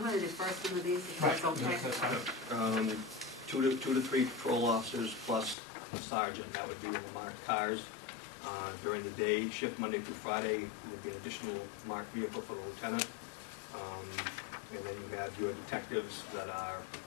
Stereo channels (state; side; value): drops out; right; at 5.6 s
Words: going to defer some of these if that's okay. Yes, that's fine. 2 to 3 patrol officers plus a sergeant. That would be in the marked cars. During the day shift, Monday through Friday, would be an additional marked vehicle for the lieutenant. And then you have your detectives that are